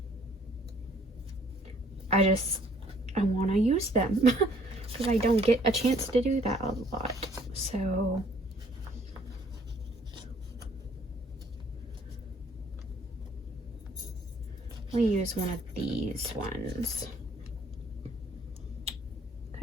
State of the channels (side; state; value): both; normal; correlation 0.61